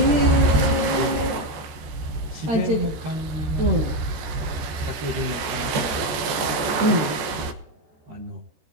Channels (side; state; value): left; late; 14 ms